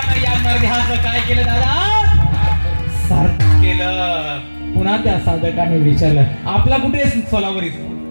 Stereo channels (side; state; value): both; inverted; correlation -1.00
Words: या नरदेहाचं काय केलं दादा? सार्थ केलं. पुन्हा त्या साधकाने विचारलं, आपला कुठे सोलावरी?